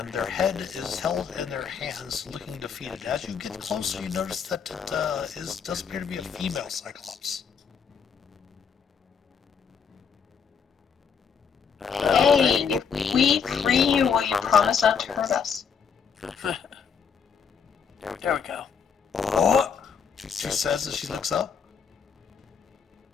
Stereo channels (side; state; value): right; quieter; 6.5 dB